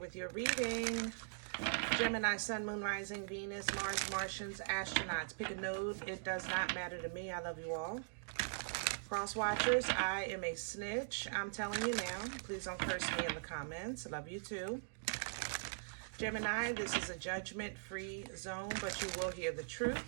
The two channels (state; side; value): silent; left; digital silence